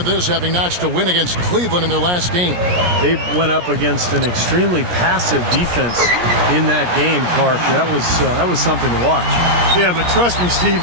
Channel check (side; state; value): left; late; 17 ms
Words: this, having notched a win against Cleveland in their last game. They went up against an extremely passive defense in that game, Clark. That was something to watch. Yeah, but trust me, Steve,